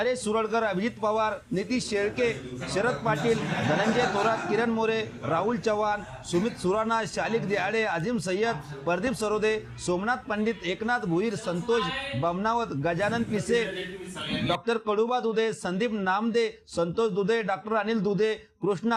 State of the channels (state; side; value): identical; both; correlation 1.00